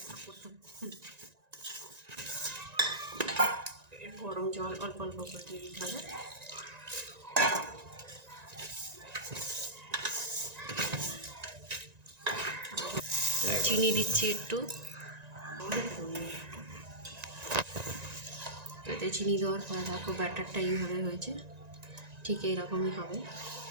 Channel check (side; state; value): left; late; 1.9 ms